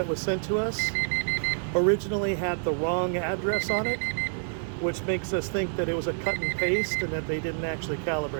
was sent to us originally had the wrong address on it, which makes us think that it was a cut and paste and that they didn't actually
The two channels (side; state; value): left; silent; digital silence